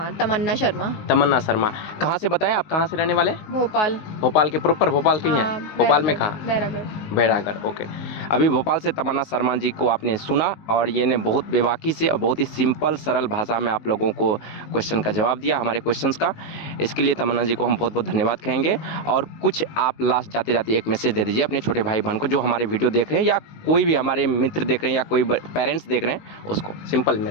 तमन्ना शर्मा। तमन्ना शर्मा। कहाँ से बताएं, आप कहाँ से रहने वाले? भोपाल। भोपाल के प्रॉपर भोपाल के ही हाँ, हैं? भोपाल में कहाँ? बैरागढ़। बैरागढ़, ओके। अभी भोपाल से तमन्ना शर्मा जी को आपने सुना और ये ने बहुत बेबाकी से और बहुत ही सिंपल सरल भाषा में आप लोगों को क्वेश्चन का जवाब दिया, हमारे क्वेश्चंस का। इसके लिए तमन्ना जी को हम बहुत बहुत धन्यवाद कहेंगे। और कुछ आप लास्ट जाते जाते एक मैसेज दे दीजिए अपने छोटे भाई बहन को जो हमारे वीडियो देख रहे हैं, या कोई भी हमारे मित्र देख रहे हैं, या कोई पेरेंट्स देख रहे हैं, उसको सिंपल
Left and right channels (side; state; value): right; late; 19 ms